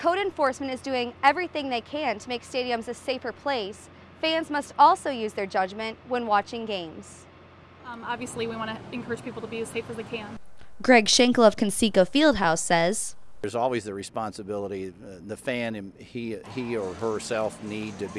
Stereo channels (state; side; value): identical; both; correlation 1.00